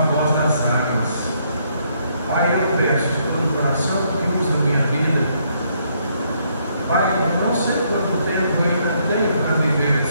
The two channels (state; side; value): inverted; both; correlation -0.72